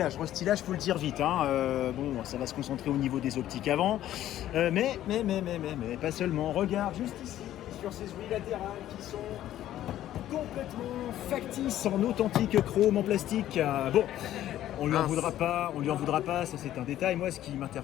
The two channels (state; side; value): quieter; right; 12.8 dB